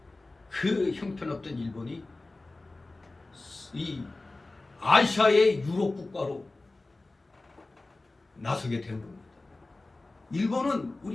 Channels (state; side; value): quieter; right; 3.1 dB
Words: 그 형편없던 일본이 이 아시아의 유럽 국가로 나서게 된 겁니다. 일본은